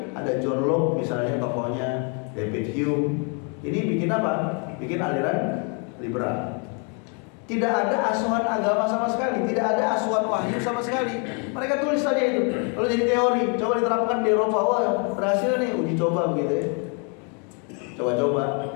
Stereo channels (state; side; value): quieter; right; 37.8 dB